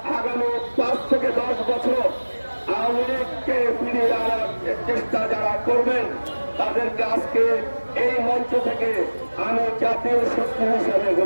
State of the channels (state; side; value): inverted; both; correlation -1.00